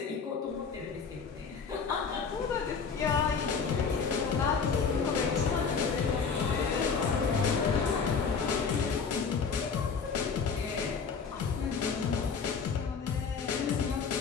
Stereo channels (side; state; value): right; quieter; 5.6 dB